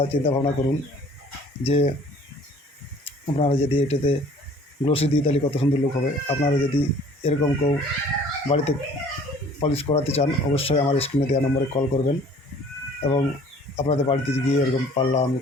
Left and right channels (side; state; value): both; normal; correlation 0.52